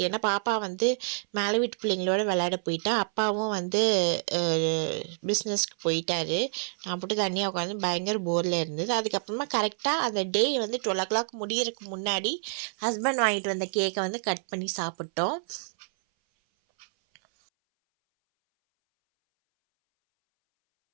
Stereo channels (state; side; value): silent; left; 59 dB below the other